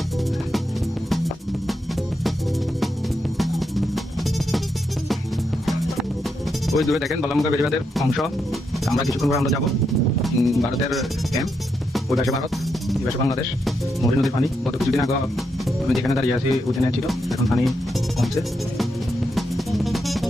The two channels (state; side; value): normal; both; correlation 0.82